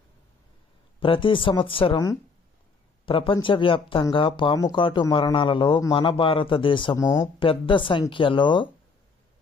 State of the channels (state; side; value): quieter; right; 4.6 dB